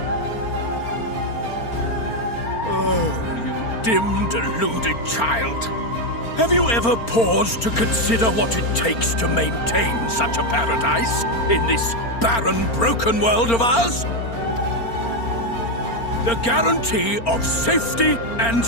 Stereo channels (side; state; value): right; late; 4.4 ms